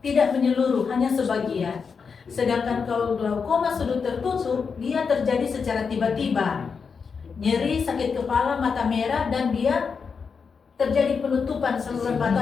tidak menyeluruh, hanya sebagian. Sedangkan kalau glaukoma sudut tertutup dia terjadi secara tiba-tiba, nyeri, sakit kepala, mata merah, dan dia terjadi penutupan saluran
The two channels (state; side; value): quieter; right; 5.7 dB